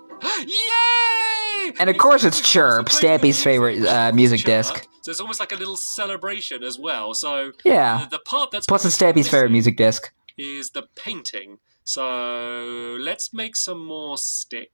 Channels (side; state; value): both; inverted; correlation -1.00